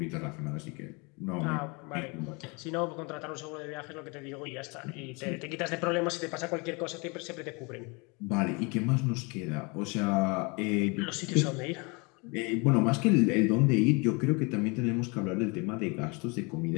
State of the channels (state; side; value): quieter; right; 29.6 dB